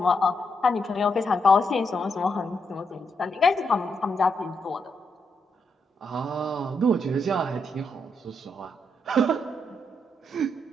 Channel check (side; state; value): both; normal; correlation 0.80